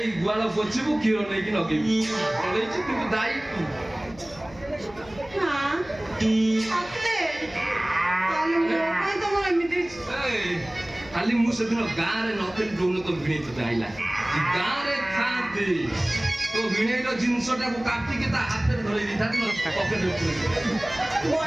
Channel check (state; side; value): noise; left; hum, 21 dB below the sound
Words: गुआल पोछबू क्षीर नहीं कि नगेबू किंतु दाई खाली मुझे गाँव में नथी डोन तो भिणे तो आईला गाँव में था तो भिणेर जिनसटा को काटिके ता हाथ में धरि दिथा पकेट में